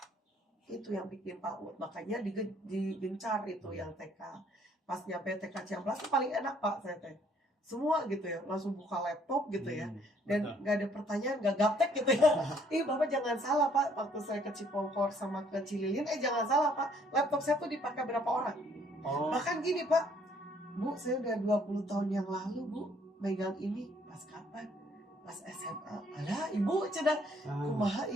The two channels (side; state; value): both; normal; correlation 0.63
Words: Itu yang bikin Pak Ud. Makanya digencar itu yang TK. Pas nyampe TK Ciamplas itu paling enak Pak saya teh. Semua gitu ya, langsung buka laptop gitu ya. Dan nggak ada pertanyaan, nggak gaptek gitu ya. Bapak jangan salah Pak, waktu saya ke Cipongkor sama ke Cililin, jangan salah Pak, laptop saya tuh dipakai berapa orang. Oh, Bahkan gini Pak, Bu saya udah 20 tahun yang lalu Bu, megang ini pas kapan? Pas SMA. Alah Ibu cenah, kumaha